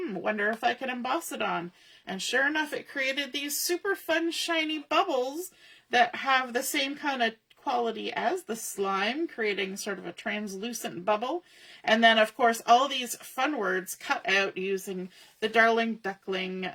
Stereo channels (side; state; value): both; identical; correlation 1.00